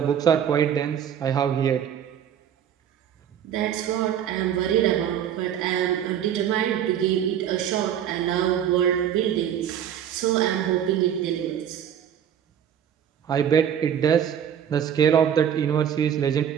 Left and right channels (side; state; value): left; quieter; 9.3 dB